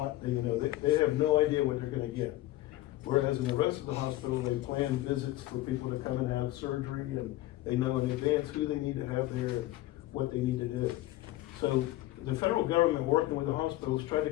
they have no idea what they're going to get. Whereas in the rest of the hospital, they plan visits for people to come and have surgery, and they know in advance who they need to have there and what they need to do. So the federal government, working with the hospitals, tried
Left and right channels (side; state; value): right; quieter; 16.5 dB